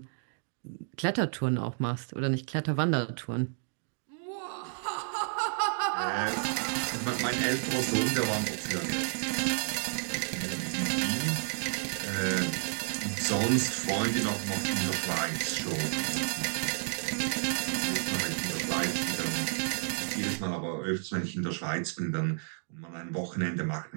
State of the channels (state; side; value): silent; left; digital silence